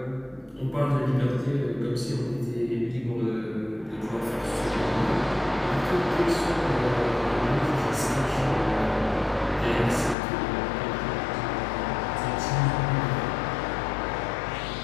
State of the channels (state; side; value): drops out; right; at 10.2 s